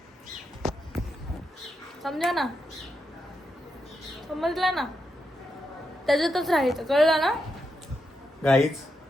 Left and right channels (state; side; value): normal; both; correlation 0.84